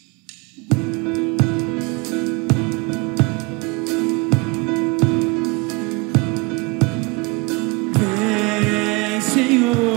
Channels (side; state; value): left; quieter; 27.5 dB